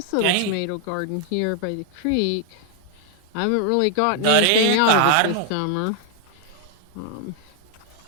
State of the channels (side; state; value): both; different; correlation 0.00